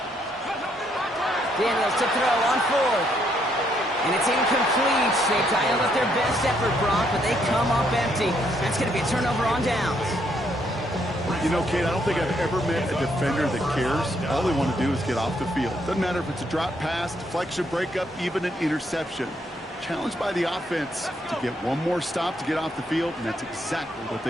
Daniels to throw on 4th. And it's incomplete. They dialed up their best effort, Brock, but they come up empty. That's going to be a turnover on downs. You know, Kate, I don't think I've ever met a defender that cares. All they want to do is get off the field. Doesn't matter if it's a drop pass, deflection, breakup, even an interception. Challenged by the offense to get one more stop to get off the field, and that's exactly what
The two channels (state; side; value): normal; both; correlation 0.73